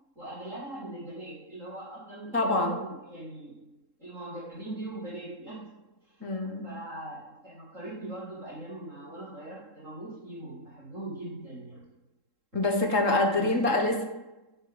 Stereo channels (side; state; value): left; late; 3.7 ms